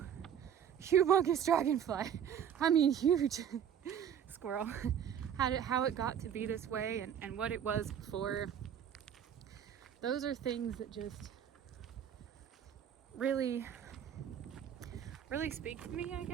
humongous dragonfly. I mean, huge squirrel. How it got to be this way and what it was before. Those are things that just really speak to me, I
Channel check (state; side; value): quieter; left; 8.9 dB